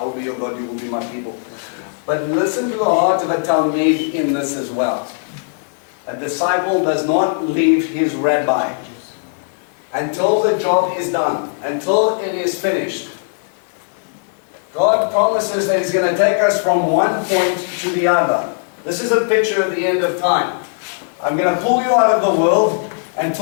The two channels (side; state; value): right; silent; digital silence